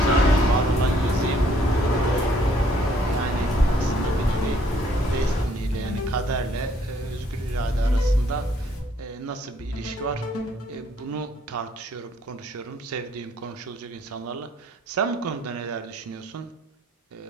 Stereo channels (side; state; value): both; normal; correlation 0.65